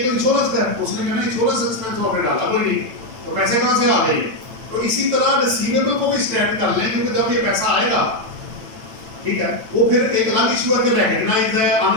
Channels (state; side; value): late; left; 9.0 ms